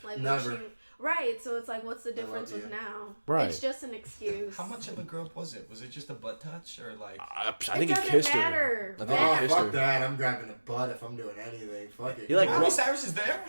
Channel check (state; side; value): inverted; both; correlation -1.00